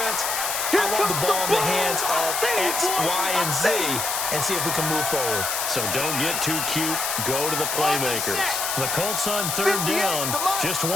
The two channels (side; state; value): left; noise; hiss, 1 dB below the sound